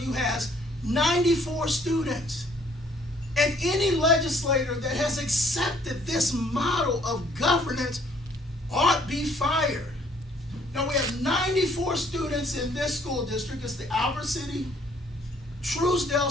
has 94 students. And any legislator that has accepted this model of governance ought be fired. Now, we have 94 students in this school district. It's the Albert City Truesdale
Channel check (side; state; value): both; normal; correlation 0.62